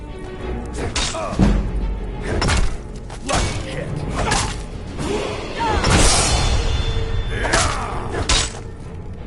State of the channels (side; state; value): both; identical; correlation 1.00